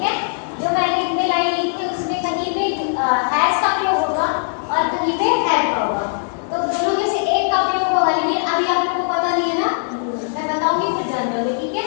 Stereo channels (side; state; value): right; silent; digital silence